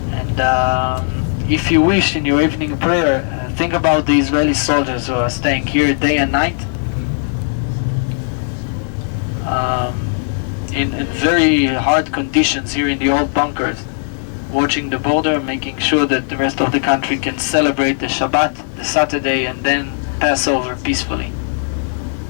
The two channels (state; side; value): silent; right; 62 dB below the other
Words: And if you wish in your evening prayer, think about the Israeli soldiers who are staying here day and night in very hard conditions here in the old bunkers, watching the border, making sure that the rest of the country can celebrate the Shabbat, the Saturday, and then pass over peacefully.